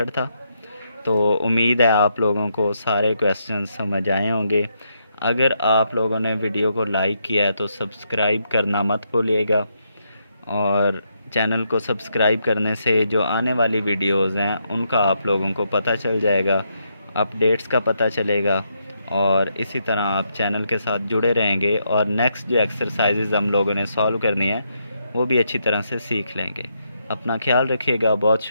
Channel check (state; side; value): inverted; both; correlation -0.79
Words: था। तो उम्मीद है आप लोगों को सारे क्वेश्चन समझ आए होंगे। अगर आप लोगों ने वीडियो को लाइक किया है तो सब्सक्राइब करना मत भूलिएगा, और चैनल को सब्सक्राइब करने से जो आने वाली वीडियोज़ हैं उनका आप लोगों को पता चल जाएगा, अपडेट्स का पता चलेगा, और इसी तरह आप चैनल के साथ जुड़े रहेंगे और नेक्स्ट जो एक्सरसाइजेज़ हम लोगों ने सॉल्व करनी है वो भी अच्छी तरह से सीख लेंगे। अपना ख्याल रखिएगा। बहुत